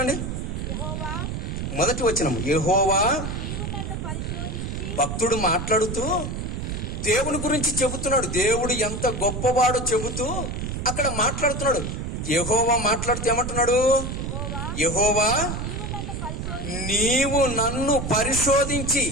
మొదటి వచనం, యెహోవా. భక్తుడు మాట్లాడుతూ దేవుని గురించి చెబుతున్నాడు. దేవుడు ఎంత గొప్పవాడో చెబుతూ అక్కడ మాట్లాడుతున్నాడు. యెహోవా మాట్లాడుతూ ఏమంటున్నాడు? యెహోవా, నీవు నన్ను పరిశోధించి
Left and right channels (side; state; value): right; noise; rumble, 4 dB below the sound